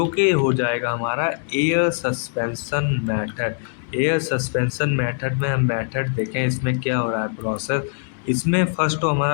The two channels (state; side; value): silent; right; digital silence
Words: कि हो जाएगा हमारा air suspension method. Air suspension method में हम मेथड देखें इसमें क्या हो रहा है प्रोसेस। इसमें फर्स्ट तो